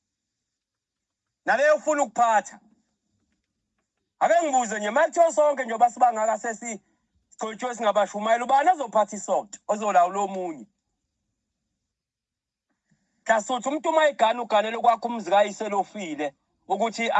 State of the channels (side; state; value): both; identical; correlation 1.00